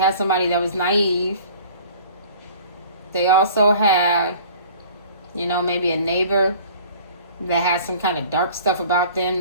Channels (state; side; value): inverted; both; correlation -0.47